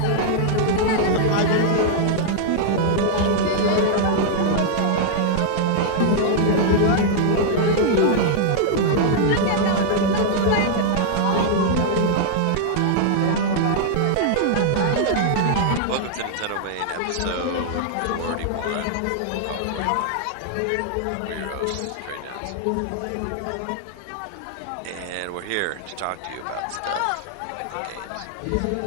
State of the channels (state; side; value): different; both; correlation -0.01